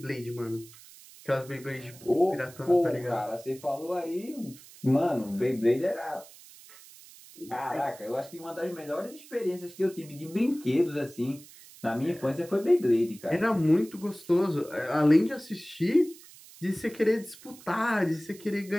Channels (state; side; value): noise; right; hiss, 20 dB below the sound